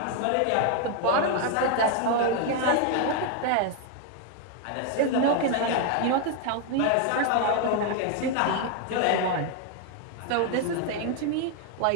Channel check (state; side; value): different; both; correlation 0.01